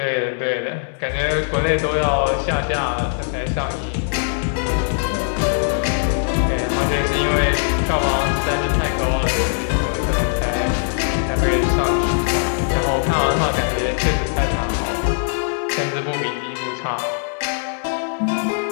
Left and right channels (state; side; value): silent; right; 65 dB below the other